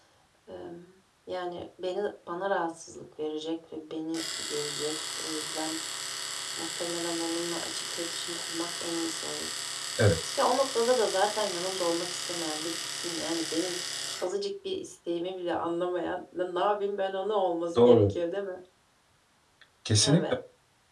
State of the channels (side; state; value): both; identical; correlation 1.00